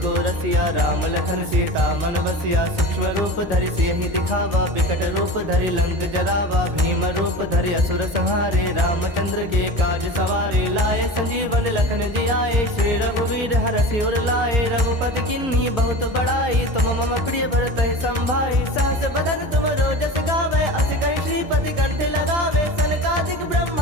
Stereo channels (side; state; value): left; late; 1.6 ms